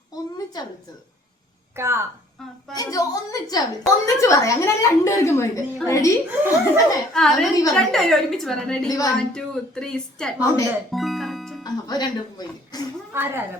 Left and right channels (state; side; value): normal; both; correlation 0.57